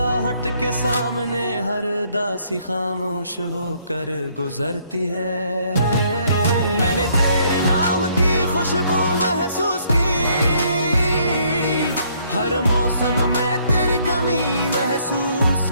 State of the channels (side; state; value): both; inverted; correlation -0.66